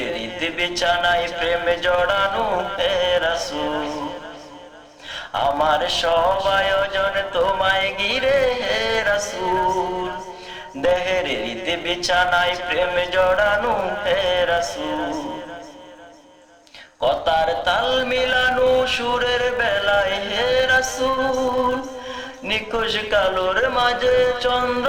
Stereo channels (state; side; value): identical; both; correlation 1.00